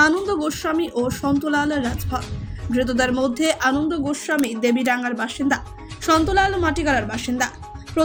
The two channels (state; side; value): identical; both; correlation 1.00